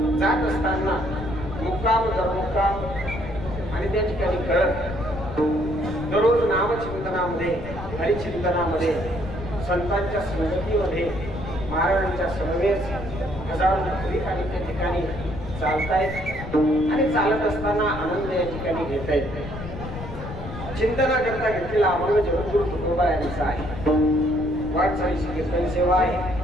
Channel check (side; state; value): left; noise; rumble, 9 dB below the sound